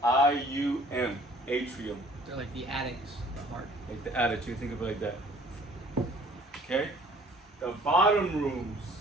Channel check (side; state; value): both; normal; correlation 0.55